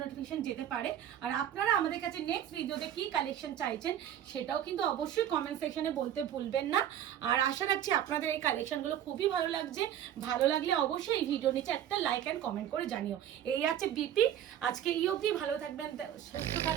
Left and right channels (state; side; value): quieter; left; 10.6 dB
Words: নোটিফিকেশন যেতে পারে। আর আপনারা আমাদের কাছে নেক্সট ভিডিওতে কি কালেকশন চাইছেন সেটাও কিন্তু অবশ্যই কমেন্ট সেকশনে বলতে ভুলবেন না। আর আশা রাখছি আপনাদের এই কালেকশনগুলো খুবই ভালো লাগছে। ভালো লাগলে অবশ্যই এই ভিডিও নিচে একটা লাইক এন্ড কমেন্ট করে জানিও। এই আছে বিপি। আজকে এই অবধি, ভালো থাকবেন, সুস্থ